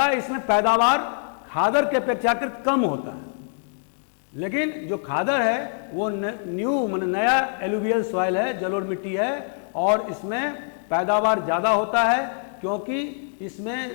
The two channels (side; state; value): right; silent; digital silence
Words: इसमें पैदावार खादर के अपेक्षाकृत कम होता है। लेकिन जो खादर है वो नया एलुवियल सॉइल है, जलोढ़ मिट्टी है, और इसमें पैदावार ज्यादा होता है क्योंकि इसमें